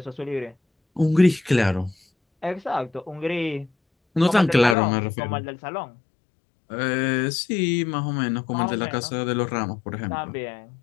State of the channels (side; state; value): right; drops out; at 4.8 s